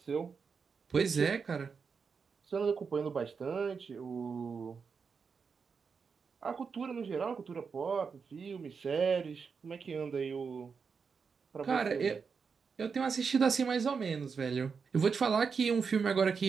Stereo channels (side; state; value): left; quieter; 5.6 dB